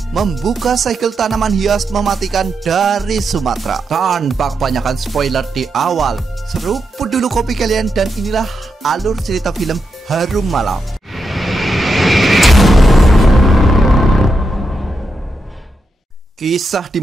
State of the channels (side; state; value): both; normal; correlation 0.85